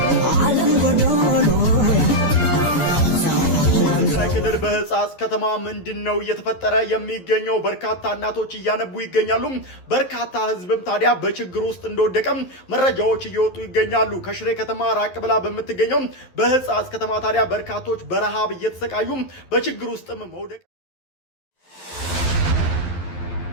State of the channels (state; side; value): late; right; 11 ms